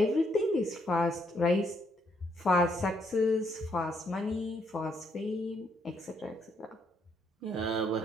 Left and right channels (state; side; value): normal; both; correlation 0.73